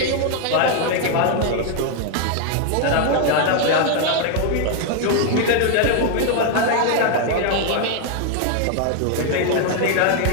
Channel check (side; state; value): both; different; correlation 0.00